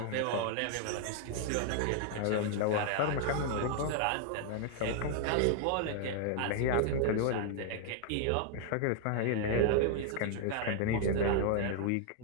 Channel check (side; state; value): both; different; correlation 0.00